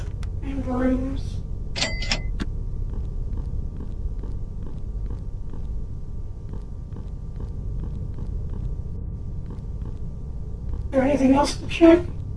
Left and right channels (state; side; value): identical; both; correlation 1.00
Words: And brooms. Is there anything else to check?